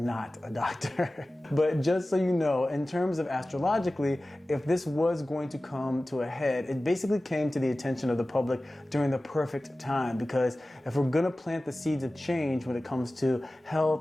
not a doctor. But just so you know, in terms of astrologically, if this was going to come to a head, it basically came to the attention of the public during the perfect time, because if we're gonna plant the seeds of change when it comes to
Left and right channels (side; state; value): both; normal; correlation 0.96